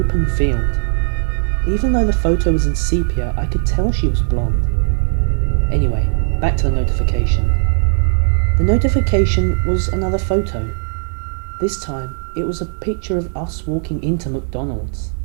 field. Even though the photo was in sepia, I could tell she was blonde. Anyway, back to the notification. The notification was another photo. This time, it was a picture of us walking into McDonald's.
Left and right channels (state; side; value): silent; left; 65 dB below the other